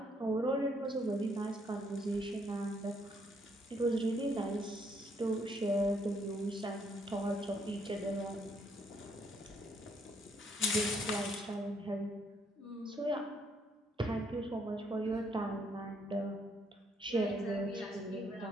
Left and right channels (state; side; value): normal; both; correlation 0.70